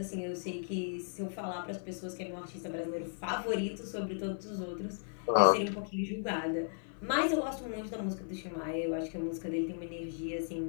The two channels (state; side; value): silent; right; digital silence